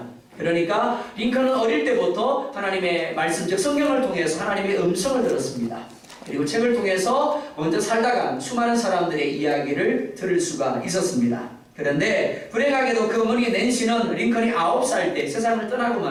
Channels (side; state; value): both; identical; correlation 1.00